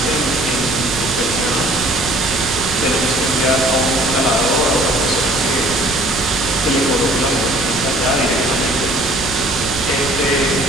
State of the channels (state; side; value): noise; right; rumble, 11 dB below the sound